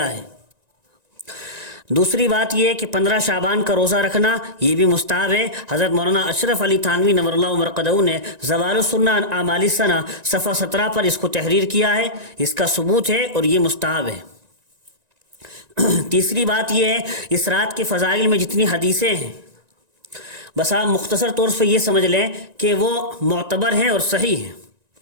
ہے۔ دوسری بات یہ ہے کہ 15 شعبان کا روزہ رکھنا یہ بھی مستحب ہے۔ حضرت مولانا اشرف علی تھانوی نور اللہ مرقدہ نے زوال السنہ عن اعمال السنہ صفحہ 17 پر اس کو تحریر کیا ہے، اس کا ثبوت ہے اور یہ مستحب ہے۔ تیسری بات یہ ہے اس رات کے فضائل میں جتنی حدیثیں ہیں، بس آپ مختصر طور سے یہ سمجھ لیں کہ وہ معتبر ہیں اور صحیح ہیں۔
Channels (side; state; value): left; late; 1.9 ms